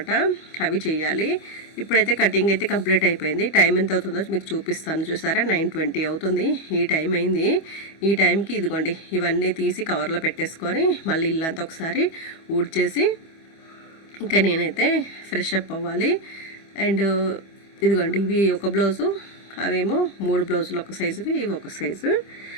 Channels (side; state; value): right; late; 25 ms